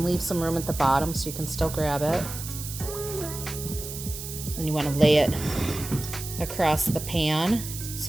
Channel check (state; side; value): noise; right; hiss, 9 dB below the sound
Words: leave some room at the bottom so you can still grab it. Then you want to lay it across the pan